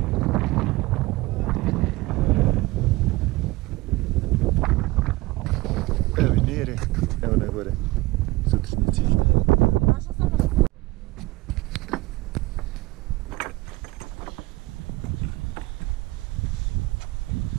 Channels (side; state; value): left; quieter; 20.4 dB